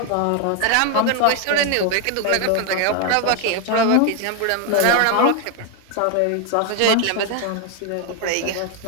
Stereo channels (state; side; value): different; both; correlation 0.01